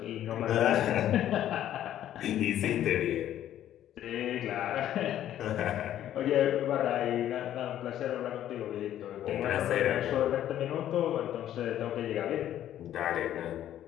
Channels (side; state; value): right; quieter; 11.7 dB